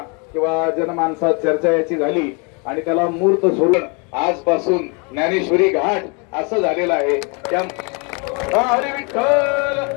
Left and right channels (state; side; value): quieter; right; 33.5 dB